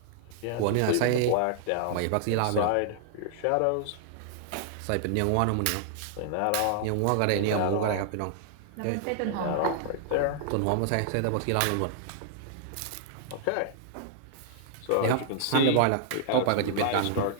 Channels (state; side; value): different; both; correlation -0.01